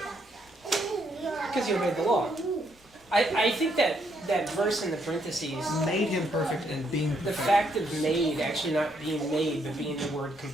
Because you obeyed the law. I think that verse in the parentheses, Made him perfect and being the perfect. fact of made actually not being made, but being the word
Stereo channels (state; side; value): normal; both; correlation 0.73